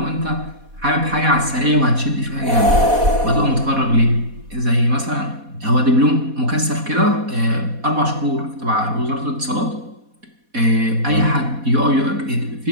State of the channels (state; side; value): late; left; 4.1 ms